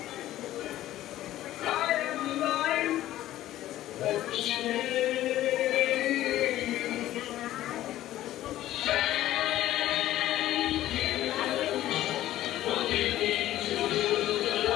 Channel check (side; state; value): right; quieter; 14.1 dB